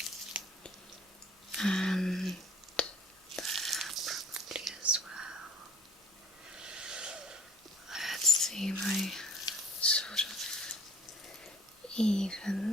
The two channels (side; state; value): both; normal; correlation 0.52